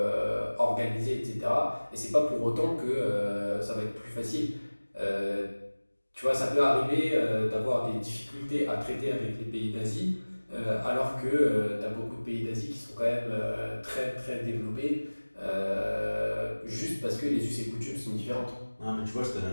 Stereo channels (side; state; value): both; inverted; correlation -1.00